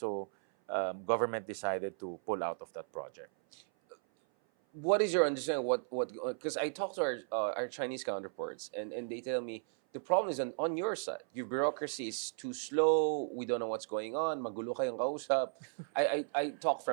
government decided to pull out of that project. What is your understanding? What? Because I talked to our Chinese counterparts, and they tell me the problem is on your side. Your bureaucracy is too slow. We don't know what's going on. Magulo kayong kausap. I talk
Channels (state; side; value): silent; left; 54 dB below the other